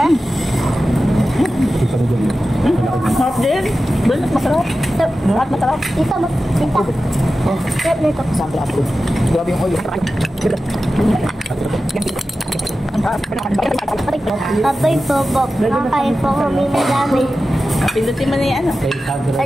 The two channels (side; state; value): both; normal; correlation 0.93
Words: Masarap din. Balat, masarap. Lahat masarap. Ito mo. Ito. Sarap nito. Sample apple. Grabe yung oil. Abay po, Bob. Kakain po kami madami. Pindutin mo na yan.